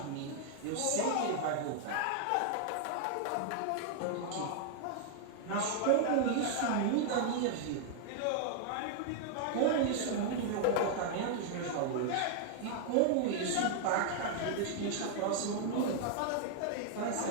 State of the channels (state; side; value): different; both; correlation 0.00